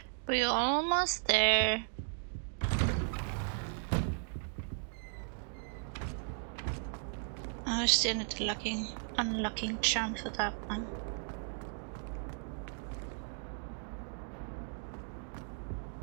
we're almost there. I still need the unlocking charm for that one.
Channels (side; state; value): left; silent; 54 dB below the other